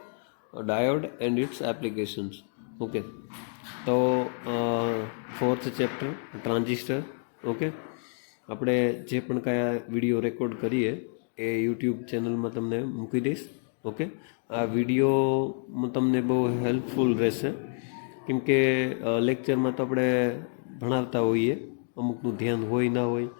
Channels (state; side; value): silent; right; 59 dB below the other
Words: diode and its applications. Okay, તો ફોર્થ ચેપ્ટર ટ્રાન્ઝિસ્ટર. ઓકે, આપણે જે પણ કયા વિડીયો રેકોર્ડ કરીએ એ યુટ્યુબ ચેનલમાં તમને મૂકી દઈશ. ઓકે, આ વિડીયો તમને બહુ હેલ્પફુલ રહેશે, કેમ કે લેક્ચરમાં તો આપણે ભણાવતા હોઈએ, અમુકનું ધ્યાન હોય ના હોય